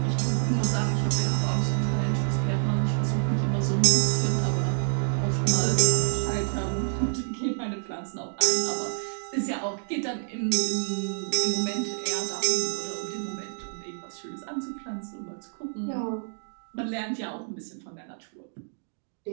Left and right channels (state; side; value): silent; left; digital silence